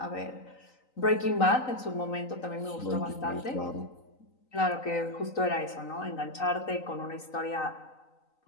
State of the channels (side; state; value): right; late; 3.9 ms